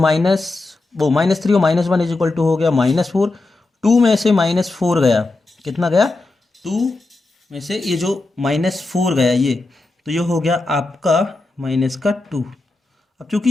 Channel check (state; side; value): quieter; right; 3.2 dB